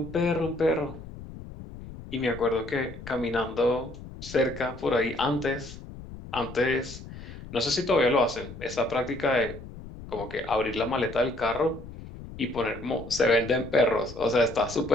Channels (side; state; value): left; noise; rumble, 13 dB below the sound